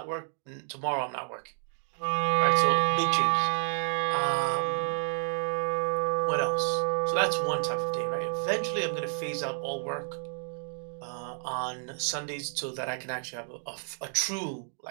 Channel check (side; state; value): left; silent; 58 dB below the other